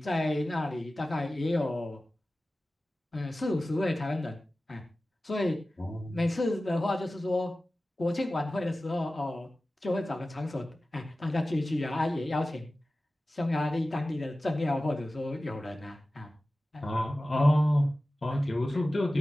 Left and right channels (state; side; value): normal; both; correlation 0.96